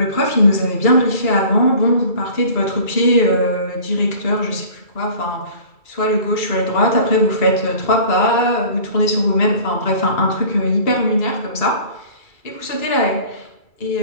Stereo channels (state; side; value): late; right; 2.3 ms